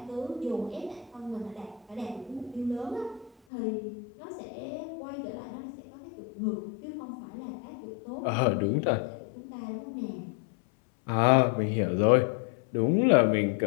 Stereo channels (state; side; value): drops out; right; at 3.3 s